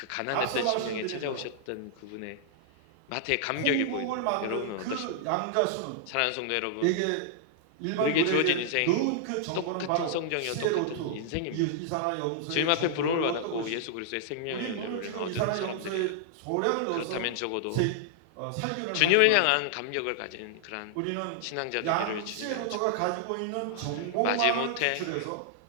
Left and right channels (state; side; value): different; both; correlation -0.01